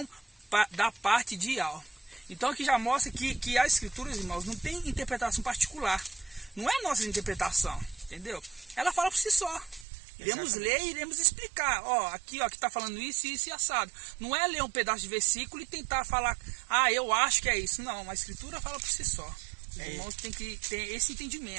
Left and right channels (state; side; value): drops out; left; at 9.9 s